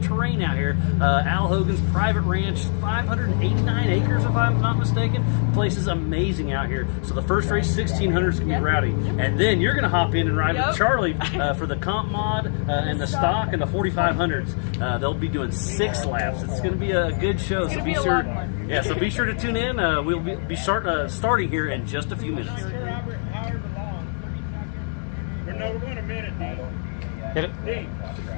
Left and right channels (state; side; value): silent; right; 58 dB below the other